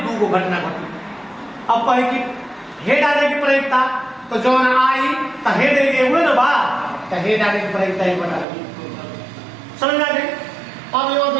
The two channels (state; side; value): drops out; left; at 8.5 s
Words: 2 घटना घटी। अब कहे कि हेड आने की प्रायिकता, तो जो आई तो हेड हुए ना बा, तो हेड आने की प्रायिकता 1/2 समझ आ गई। अब ये